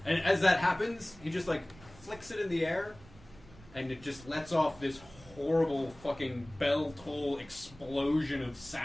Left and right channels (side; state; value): right; noise; rumble, 21 dB below the sound